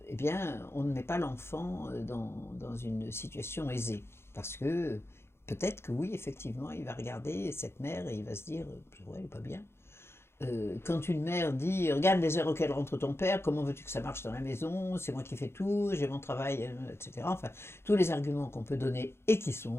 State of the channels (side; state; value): right; late; 0.12 ms